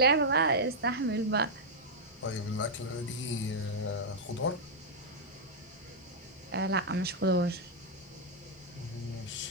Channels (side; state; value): both; normal; correlation -0.06